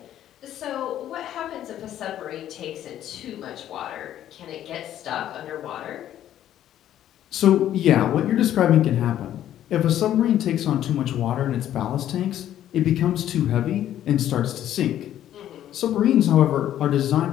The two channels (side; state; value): right; quieter; 11.7 dB